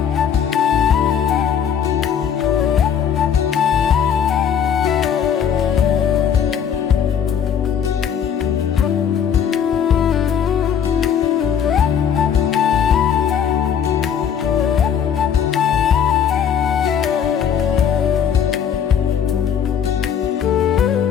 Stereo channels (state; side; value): quieter; right; 8.1 dB